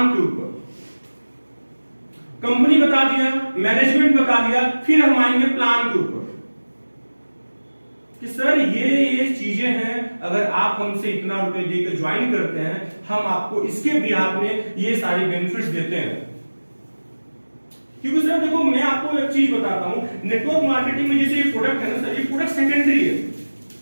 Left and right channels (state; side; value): inverted; both; correlation -1.00